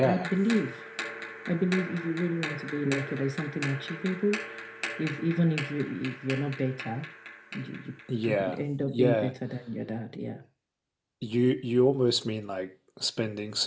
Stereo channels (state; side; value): identical; both; correlation 1.00